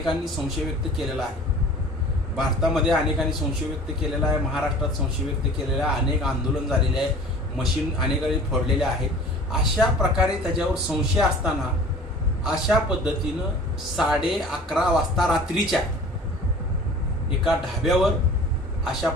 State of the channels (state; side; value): normal; both; correlation 0.44